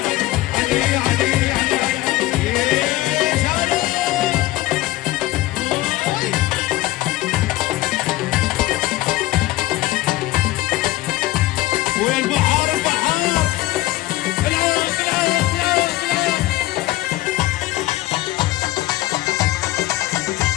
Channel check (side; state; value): right; quieter; 17.2 dB